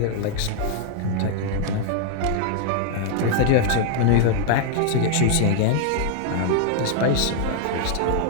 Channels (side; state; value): both; different; correlation 0.00